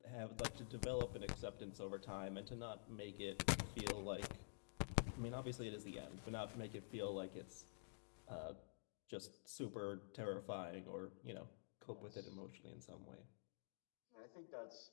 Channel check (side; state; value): right; silent; digital silence